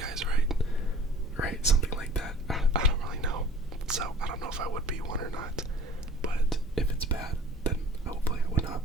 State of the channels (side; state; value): both; normal; correlation 0.45